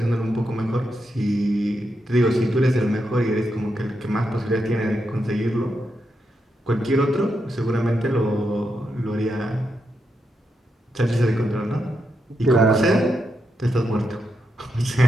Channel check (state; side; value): normal; both; correlation 0.84